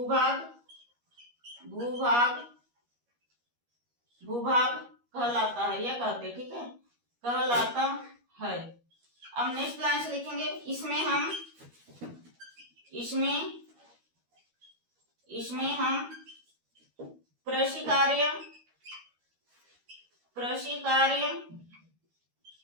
कहलाता है, यह कहते हैं, ठीक है? कहलाता है। अब नेक्स्ट लाइन से लिखेंगे। इसमें हम कृषि कार्य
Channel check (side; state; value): left; late; 13 ms